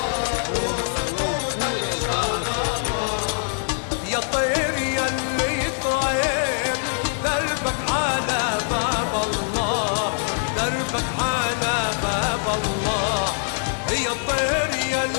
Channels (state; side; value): silent; right; digital silence